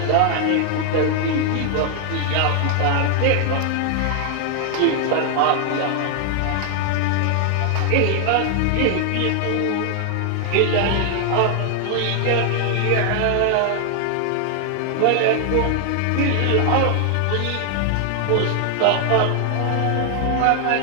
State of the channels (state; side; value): different; both; correlation 0.00